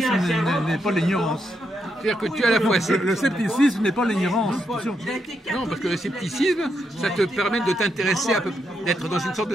n'est pas l'ignorance. C'est-à-dire que tu as à la fois... Le scepticisme n'est pas l'ignorance. Non, parce que le scepticisme, ça te permet de t'intéresser d'être dans une sorte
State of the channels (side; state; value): both; normal; correlation 0.81